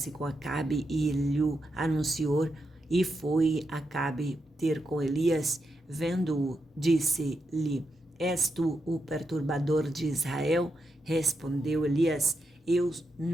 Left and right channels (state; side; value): normal; both; correlation 0.85